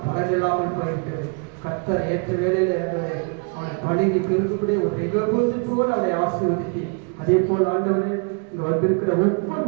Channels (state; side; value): quieter; left; 38.5 dB